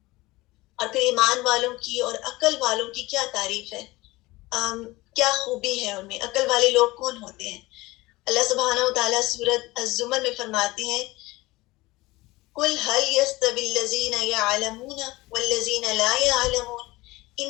اور پھر ایمان والوں کی اور عقل والوں کی کیا تعریف ہے، کیا خوبی ہے ان میں. عقل والے لوگ کون ہوتے ہیں؟ اللہ سبحانہ وتعالیٰ سورۃ الزمر میں فرماتے ہیں قل هل يستوي الذين يعلمون والذين لا يعلمون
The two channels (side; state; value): right; quieter; 20.4 dB